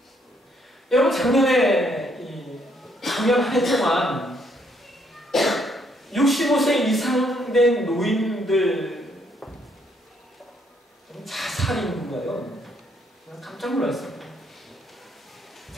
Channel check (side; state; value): both; normal; correlation 0.70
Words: 여러분, 작년에 작년 한 해 동안 65세 이상 된 노인들 자살 인구가요. 깜짝 놀랐습니다.